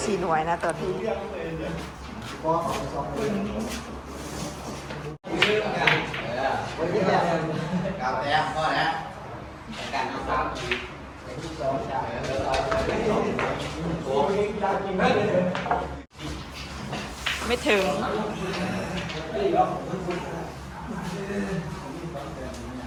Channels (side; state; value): both; identical; correlation 1.00